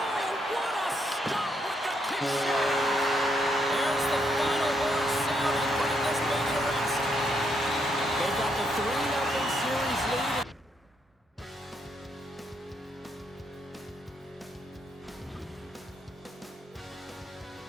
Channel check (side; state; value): both; normal; correlation 0.76